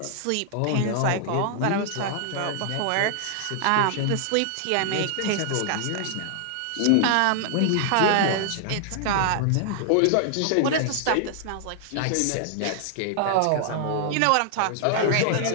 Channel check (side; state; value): both; different; correlation 0.00